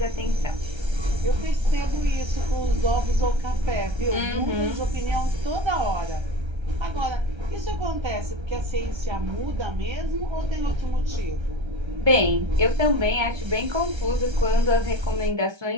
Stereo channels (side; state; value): left; late; 1.3 ms